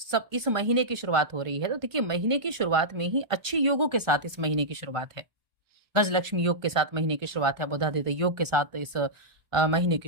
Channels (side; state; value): left; late; 1.5 ms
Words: सब इस महीने की शुरुआत हो रही है, तो देखिए महीने की शुरुआत में ही अच्छे योगों के साथ इस महीने की शुरुआत है। गजलक्ष्मी योग के साथ महीने की शुरुआत है, बुधादित्य योग के साथ इस महीने